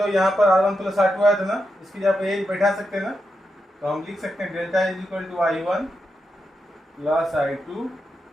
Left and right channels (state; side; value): normal; both; correlation 0.86